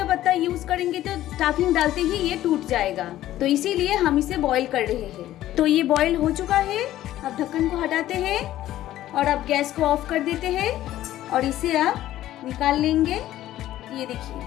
पत्ता यूज करेंगे तो स्टफिंग डालते ही ये टूट जाएगा। तो इसीलिए हम इसे बॉईल कर रहे हैं। तो ये बॉईल हो चुका है। अब ढक्कन को हटाते हैं और अब गैस को ऑफ कर देते हैं और इसे आप निकाल लेंगे। ये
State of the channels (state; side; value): quieter; right; 13.8 dB